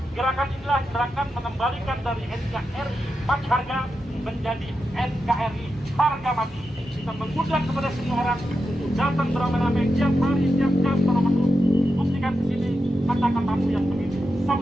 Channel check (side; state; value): both; normal; correlation 0.88